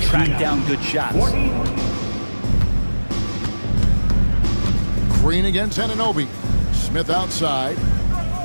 track down good shots. Green against Anunoby. Smith outside.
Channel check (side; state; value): both; inverted; correlation -1.00